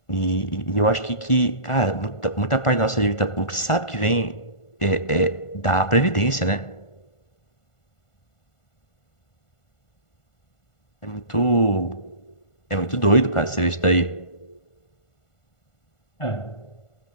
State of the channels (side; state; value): right; late; 1.5 ms